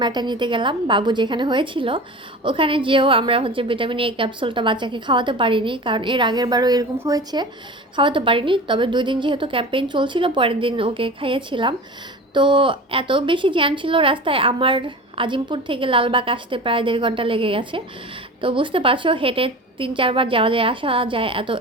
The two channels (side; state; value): both; normal; correlation 0.34